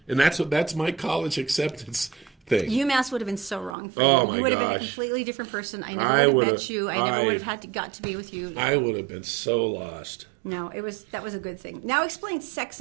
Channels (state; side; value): drops out; left; at 3.8 s